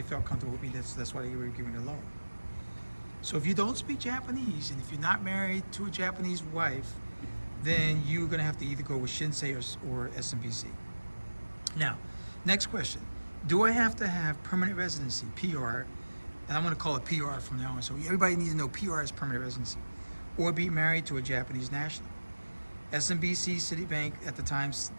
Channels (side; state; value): both; inverted; correlation -1.00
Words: comfortable with me. That's why they were giving the loan. So if you don't speak Japanese, and if you're not married to a Japanese wife, then you're going to have to either go with Shinsei or SMBC. Now, next question. Do I have to have permanent residency, PR, and I'm going to call it PR from now on, so everybody needs to know PR is permanent residency, or be married to a Japanese national? SMBC, Citibank at the time,